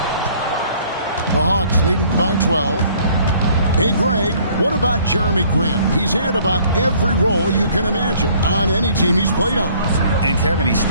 The Hawks leading by 12. Hey, Greg, what about Jeremy Grant? He's had about every role you can imagine on any team he's played on. And Kevin, he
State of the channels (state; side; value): inverted; both; correlation -0.58